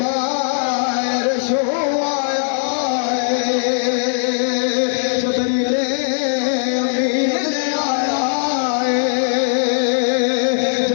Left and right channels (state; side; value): silent; right; digital silence